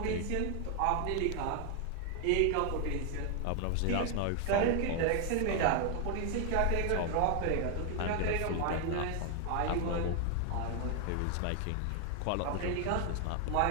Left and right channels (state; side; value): different; both; correlation 0.00